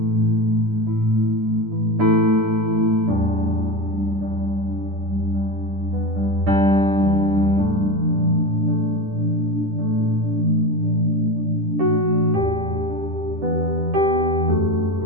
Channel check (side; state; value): left; late; 9.9 ms